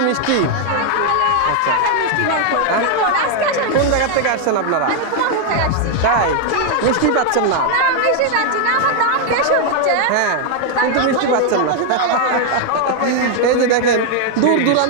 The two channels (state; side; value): different; both; correlation 0.00